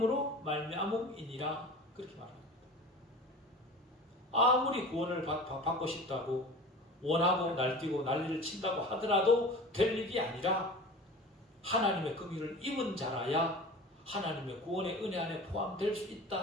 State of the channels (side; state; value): both; normal; correlation 0.37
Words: 말미암음이니라. 그렇게 말합니다. 아무리 구원을 받고 싶다고 원하고 날뛰고 난리를 친다고 하더라도 될 일이 아니라 하나님의 긍휼을 입은 자라야 하나님의 구원의 은혜 안에 포함될 수